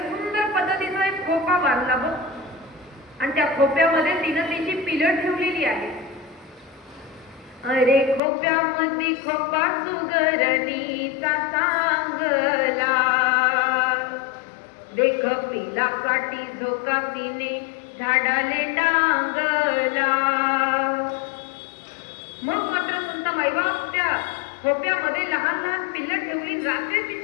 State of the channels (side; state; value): right; drops out; at 8.2 s